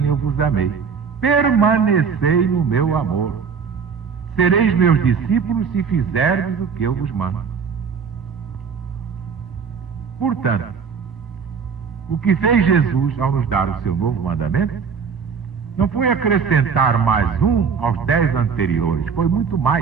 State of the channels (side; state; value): left; quieter; 6.1 dB